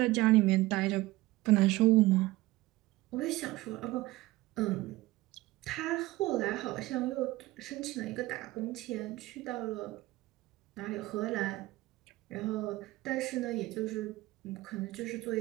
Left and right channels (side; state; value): left; quieter; 18.8 dB